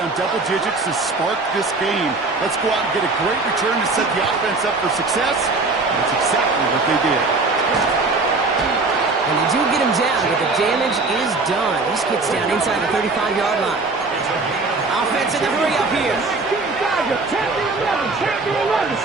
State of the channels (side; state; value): left; quieter; 3.6 dB